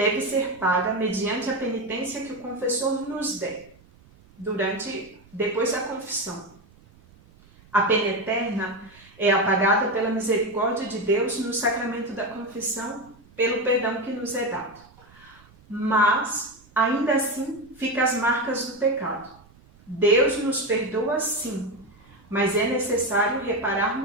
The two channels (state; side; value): noise; right; rumble, 27 dB below the sound